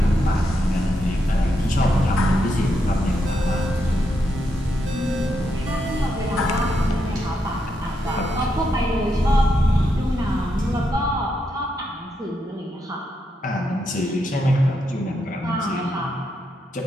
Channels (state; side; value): normal; both; correlation 0.82